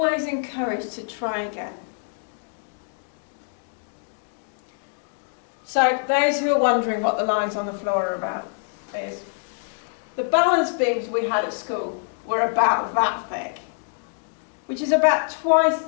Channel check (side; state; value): right; silent; 62 dB below the other